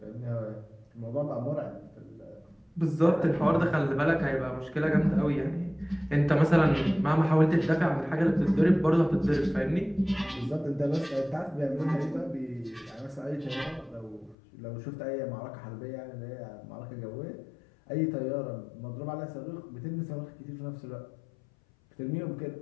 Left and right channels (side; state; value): right; drops out; at 14.4 s